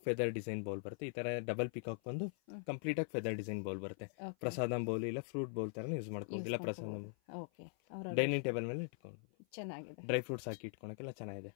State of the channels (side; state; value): right; silent; 50 dB below the other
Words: ಫೆದರ್ ಡಿಸೈನ್ ಬೌಲ್ ಬರುತ್ತೆ. ಈ ತರ ಡಬಲ್ ಪಿಕಾಕ್ ಬಂದು ಕಂಪ್ಲೀಟ್ ಆಗಿ ಫೆದರ್ ಡಿಸೈನ್ ಬೌಲ್ ಬರುತ್ತೆ. ಪ್ರಸಾದಂ ಬೌಲ್ ಇಲ್ಲ ಫ್ರೂಟ್ ಬೌಲ್ ತರ ಯೂಸ್ ಮಾಡ್ಕೋಬಹುದು. ಇಲ್ಲ ಪ್ರಸಾದಂ ಡೈನಿಂಗ್ ಟೇಬಲ್ ಮೇಲೆ ಇಟ್ಕೊಂಡು ಚೆನ್ನಾಗಿದೆ. ಡ್ರೈ ಫ್ರೂಟ್ಸ್ ಹಾಕಿ ಇಟ್ಕೊಳಕ್ಕೆಲ್ಲ ಚೆನ್ನಾಗಿದೆ.